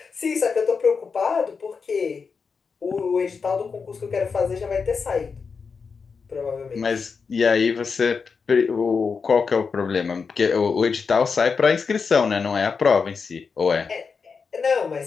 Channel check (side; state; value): right; quieter; 5.3 dB